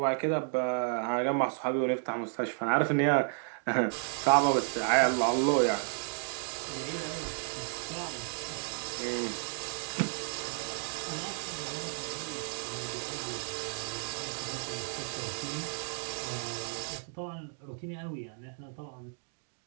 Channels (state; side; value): silent; left; 56 dB below the other